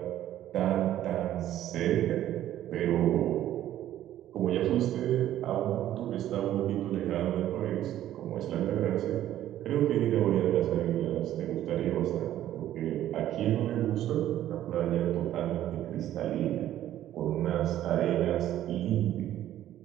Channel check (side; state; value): left; quieter; 12.5 dB